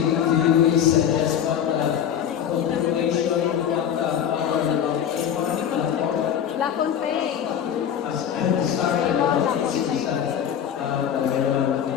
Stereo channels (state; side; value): quieter; right; 9.1 dB